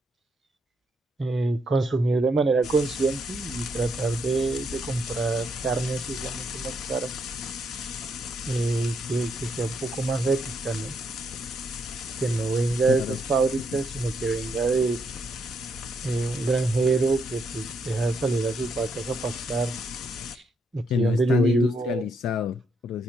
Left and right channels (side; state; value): both; normal; correlation 0.77